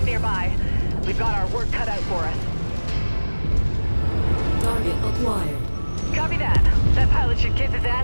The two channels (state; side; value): inverted; both; correlation -1.00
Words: nearby. We've got our work cut out for us. Target acquired. Copy that. That pilot should kiss his